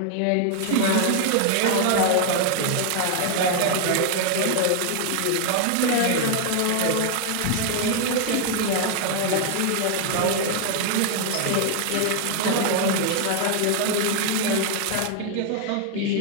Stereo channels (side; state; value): both; different; correlation 0.00